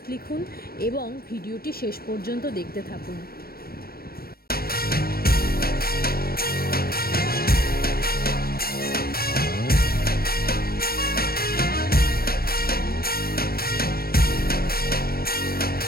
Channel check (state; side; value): late; right; 0.44 ms